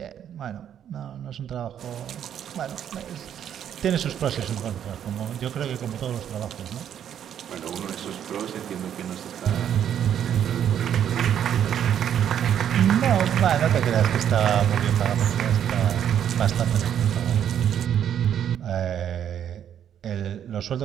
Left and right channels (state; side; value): quieter; left; 9.5 dB